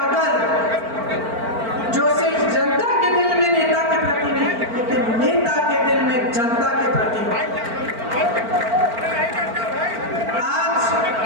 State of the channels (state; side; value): late; left; 4.4 ms